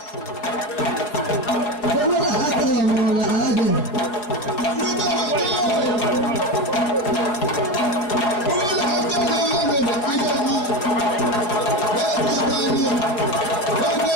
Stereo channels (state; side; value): late; right; 5.0 ms